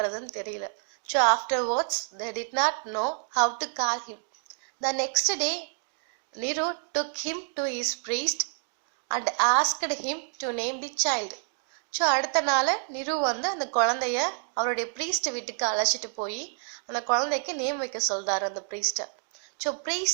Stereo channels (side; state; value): left; silent; 56 dB below the other